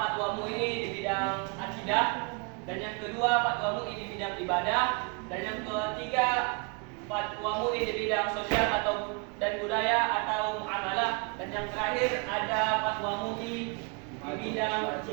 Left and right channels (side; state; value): left; quieter; 33.0 dB